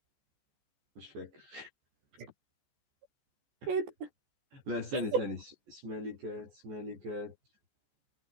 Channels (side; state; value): left; late; 14 ms